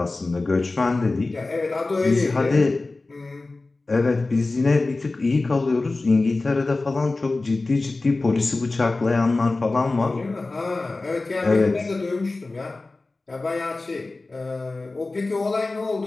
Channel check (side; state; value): right; quieter; 3.3 dB